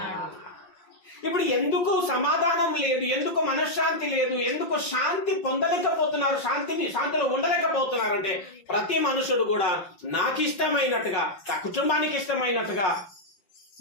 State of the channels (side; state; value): right; late; 5.4 ms